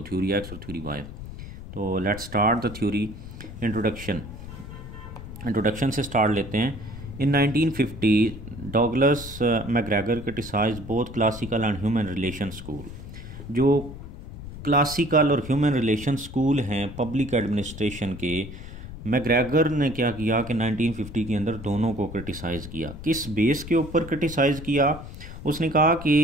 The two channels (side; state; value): left; noise; rumble, 12 dB below the sound